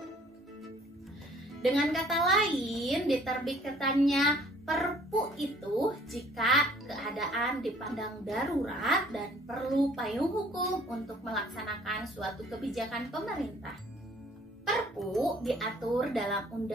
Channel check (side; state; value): both; normal; correlation 0.56